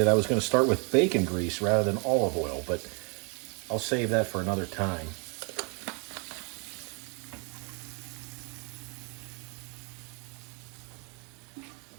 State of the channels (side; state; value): left; quieter; 35.9 dB